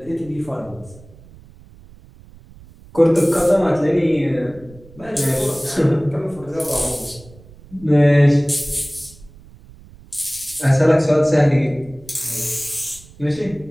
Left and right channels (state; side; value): noise; right; rumble, 22 dB below the sound